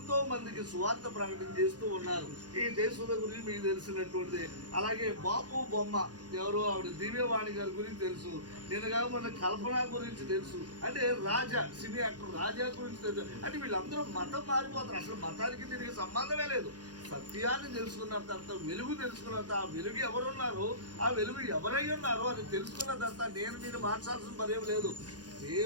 మందికి సువార్త ప్రకటన చేస్తూ ఉన్నారు. ఈ దేశంలో గురించి మీకు తెలిసినటువంటిది. అలాగే బాపు బొమ్మ ఎవరు, ఆవిడ దివ్యవాణి గారి గురించి తెలుసు. నేను కాక మన కల్పన గురించి తెలుసు. అంటే రాజా సినీ యాక్టర్ రాజా గురించి తెలుసు. అంటే వీళ్ళందరూ మతం మారిపోతారు. అసలు మతానికి దీనికి సంబంధమే లేదు. సత్యాన్ని తెలుసుకున్న తర్వాత, వెలుగు తెలుసుకున్న తర్వాత, ఆ వెలుగు ఎవరున్నారో, ఆ వెలుగు ఎవరై ఉన్నారో అని తెలుసుకున్న తర్వాత నేను నేను మార్చాల్సిన పనేం లేదు.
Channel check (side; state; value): left; late; 0.69 ms